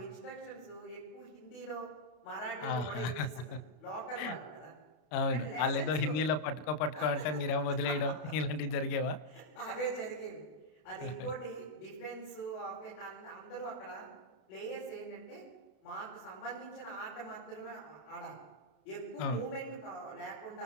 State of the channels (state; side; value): late; right; 33 ms